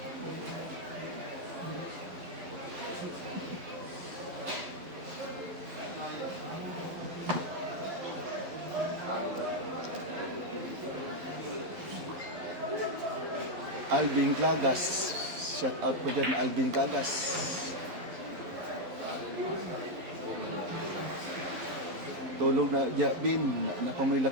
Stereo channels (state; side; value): late; left; 11 ms